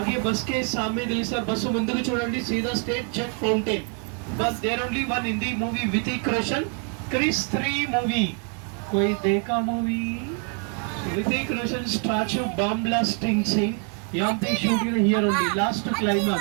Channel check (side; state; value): left; quieter; 39.5 dB